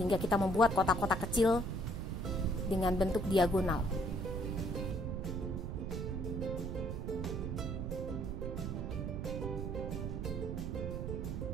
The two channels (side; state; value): right; noise; rumble, 3 dB below the sound